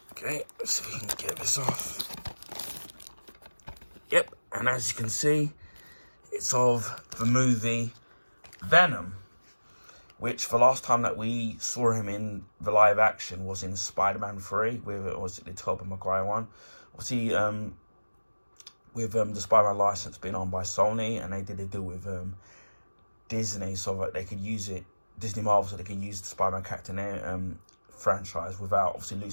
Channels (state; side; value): inverted; both; correlation -1.00